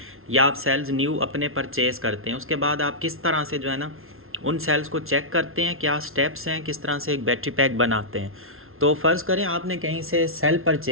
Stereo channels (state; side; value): late; left; 0.61 ms